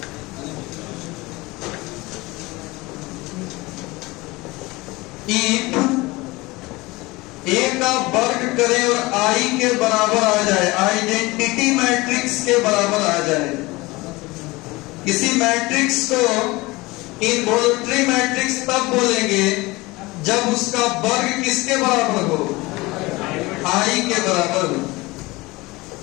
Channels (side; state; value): right; quieter; 22.0 dB